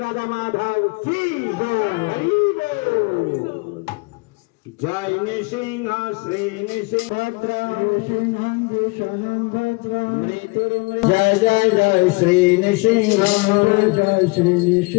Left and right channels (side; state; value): right; quieter; 28.1 dB